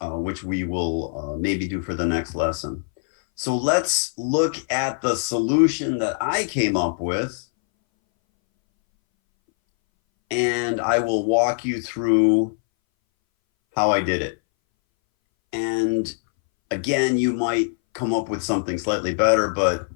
which we will maybe do for the next lesson. So let's look at the solution that I came up with. And I will walk you through how I did it. And again, you might come up with something slightly better, but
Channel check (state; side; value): silent; right; 61 dB below the other